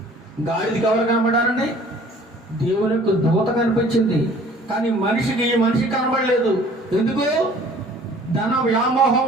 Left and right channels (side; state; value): both; normal; correlation 0.52